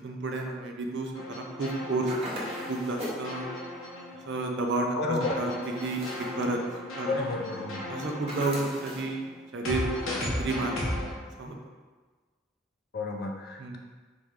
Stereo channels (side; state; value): both; normal; correlation 0.43